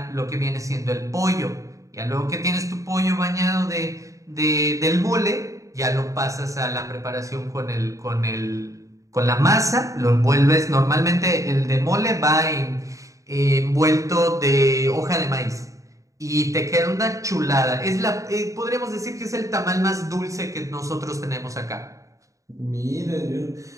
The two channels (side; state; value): left; late; 0.16 ms